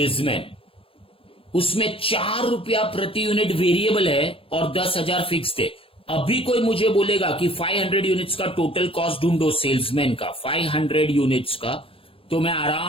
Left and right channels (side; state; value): right; late; 0.27 ms